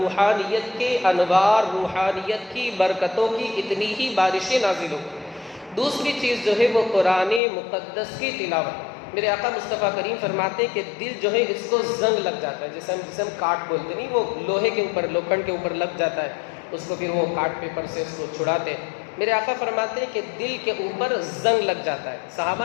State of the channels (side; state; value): right; drops out; at 7.4 s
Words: کے انوار، روحانیت کی برکتوں کی اتنی ہی بارشیں نازل ہوں۔ دوسری چیز جو ہے وہ قرآن مقدس کی تلاوت۔ میرے آقا مصطفیٰ کریم فرماتے ہیں کہ دل جو ہے اس کو زنگ لگ جاتا ہے، جسے ہم کاٹ بولتے نہیں، وہ لوہے کے اوپر، لوکھنڈ کے اوپر لگ جاتا ہے، اس کو پھر وہ کاٹ پیپر سے اس کو چھڑاتے ہیں۔ میرے آقا فرماتے ہیں کہ دل کے اوپر زنگ لگ جاتا ہے۔ صحابہ